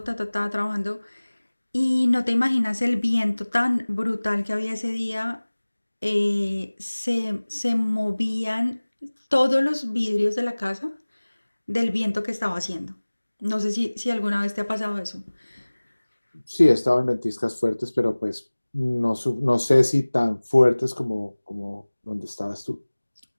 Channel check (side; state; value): both; inverted; correlation -1.00